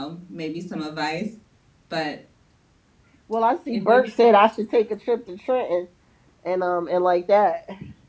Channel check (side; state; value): both; identical; correlation 1.00